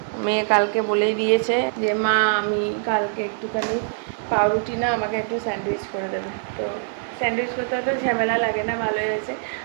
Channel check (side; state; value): left; silent; digital silence